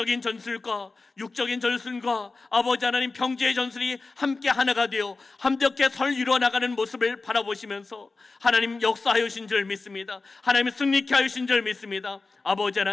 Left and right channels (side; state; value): right; quieter; 3.8 dB